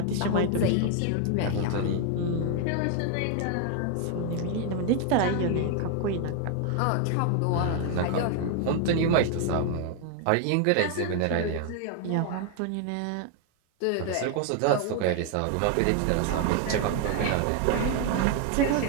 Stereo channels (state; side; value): different; both; correlation 0.01